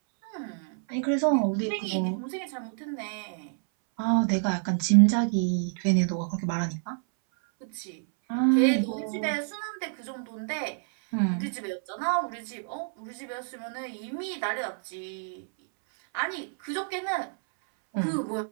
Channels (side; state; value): left; silent; 59 dB below the other